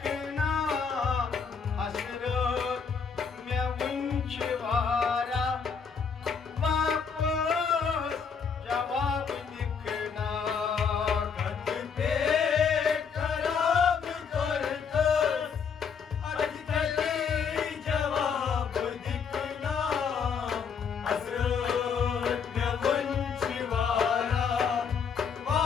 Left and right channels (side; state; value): right; quieter; 6.2 dB